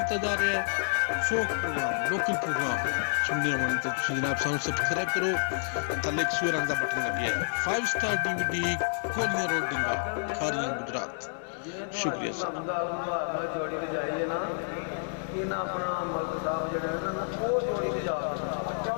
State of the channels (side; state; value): right; silent; digital silence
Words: ਜਾ ਰਿਹਾ ਹੈ ਫੋਕ ਪ੍ਰੋਗਰਾਮ ਲੋਕਲ ਪ੍ਰੋਗਰਾਮ ਸੁਣਨੇ ਵਾਲੇ ਤਾਂ ਤੁਸੀਂ ਜਨਾਬ ਸਾਨੂੰ ਸਬਸਕ੍ਰਾਈਬ ਕਰੋ ਥੱਲੇ ਇੱਕ ਸੂਰ ਰੰਗ ਦਾ ਬਟਨ ਲੱਗਿਆ ਹੈ 5 ਸਟਾਰ DVD ਕੋਲੀਆਂ ਰੋਡ ਡਿੰਗਾ ਖਾਰੀਆਂ ਗੁਜਰਾਤ ਸ਼ੁਕਰੀਆ ਸਰ ਜੋੜੀ ਤੇ ਜਾਈਏ ਨਾ ਇਹਨਾਂ ਆਪਣਾ ਮਲਕ ਸਾਹਿਬ ਜਿਹੜੇ ਨੇ ਨਾ ਉਹ ਜੋੜੀ ਤੇ ਜਾ